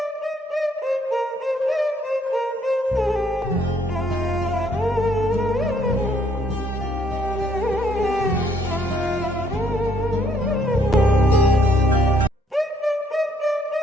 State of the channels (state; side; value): normal; both; correlation 0.67